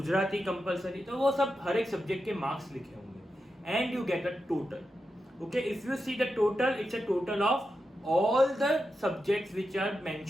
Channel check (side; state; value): both; normal; correlation 0.88